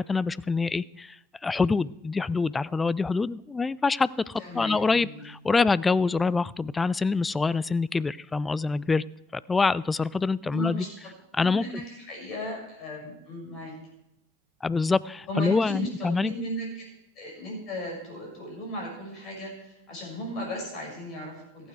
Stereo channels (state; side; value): quieter; right; 3.5 dB